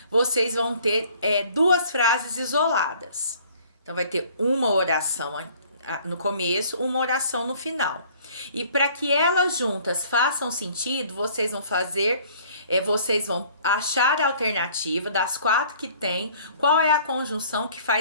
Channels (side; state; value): both; inverted; correlation -0.55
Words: vocês vão ter 2 frases isoladas. Então, vai ter uma oração no começo, uma oração no final. E para que elas juntas façam sentido, vocês vão achar a alternativa das 4 que tem, qual é a conjunção que